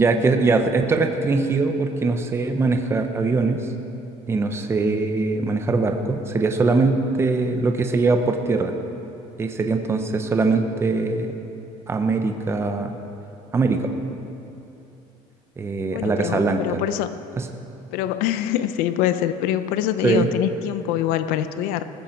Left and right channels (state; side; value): normal; both; correlation 0.61